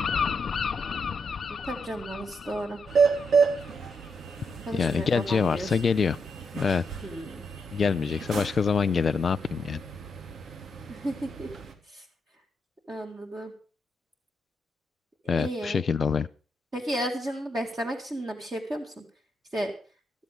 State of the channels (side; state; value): both; normal; correlation 0.81